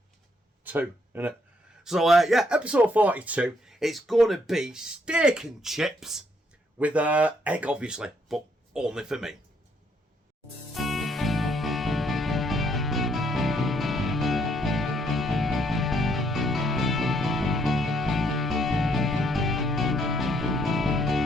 isn't it? So yeah, episode 42, it's going to be steak and chips with egg obviously, but only for me.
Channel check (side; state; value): both; normal; correlation 0.71